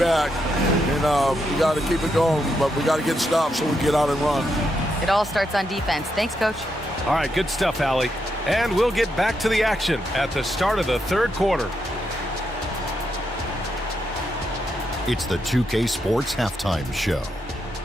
and we got to keep it going. But we got to get stops so we get out and run. It all starts on defense. Thanks, Coach. All right, good stuff, Allie. And we'll get back to the action at the start of the third quarter. It's the 2K Sports Halftime Show.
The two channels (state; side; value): normal; both; correlation 0.81